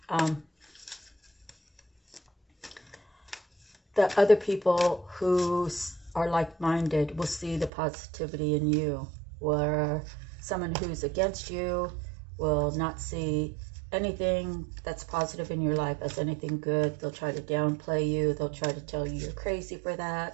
the other people who are like-minded will see the positivity in you, where someone who's against you will not see anything that's positive in your life as anything good. They'll try to downplay you. They'll try to tell you you're crazy for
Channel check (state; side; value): drops out; left; at 7.7 s